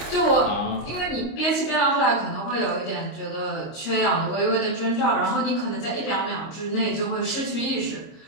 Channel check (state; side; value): late; right; 25 ms